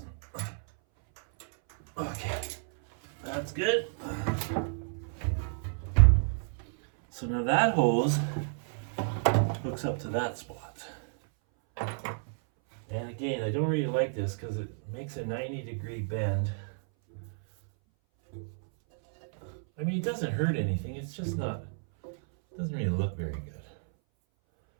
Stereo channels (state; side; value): silent; left; 57 dB below the other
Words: Okay, that's good. So now that hose hooks up to that spot. And again, I don't really like this because it makes a 90-degree bend. I mean, it doesn't hurt anything. It's just not, doesn't really look very good.